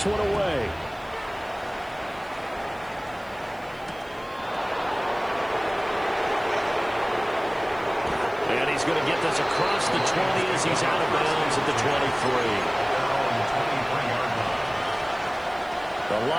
one away. And he's going to get this across the 20 as he's out of bounds at the 23. The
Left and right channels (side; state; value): right; noise; hiss, 28 dB below the sound